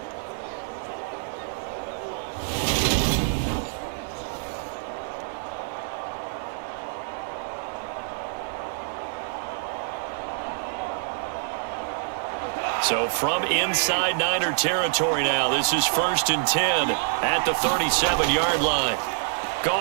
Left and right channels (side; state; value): left; silent; digital silence